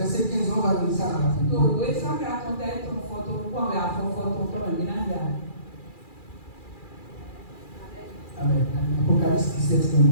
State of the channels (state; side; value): late; right; 2.4 ms